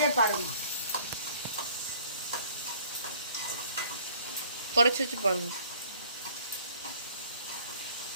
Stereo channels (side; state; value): both; inverted; correlation -0.55